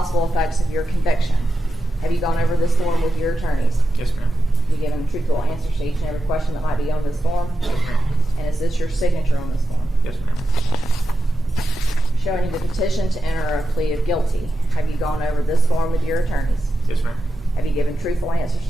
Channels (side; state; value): both; normal; correlation 0.90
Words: effects of your conviction. Have you gone over this form with your attorneys? Yes, ma'am. You given truthful answers to each and every question that might be on this form? Yes, ma'am. And is this your signature on this form? Yes, ma'am. Showing you the petition to enter a plea of guilty. Have you gone over this form with your attorneys? Yes, ma'am. Have you given truthful answers